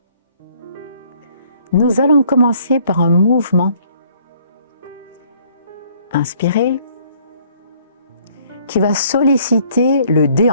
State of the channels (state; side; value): inverted; both; correlation -0.61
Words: Nous allons commencer par un mouvement. Inspirez, qui va solliciter le